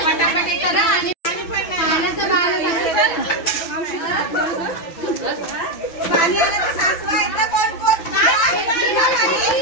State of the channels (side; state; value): right; late; 6.0 ms